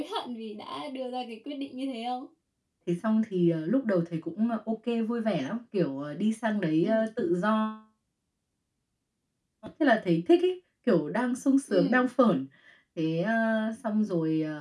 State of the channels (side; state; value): both; identical; correlation 1.00